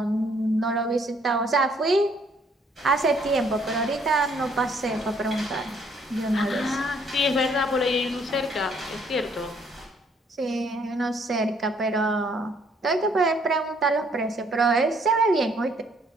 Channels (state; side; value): normal; both; correlation 0.65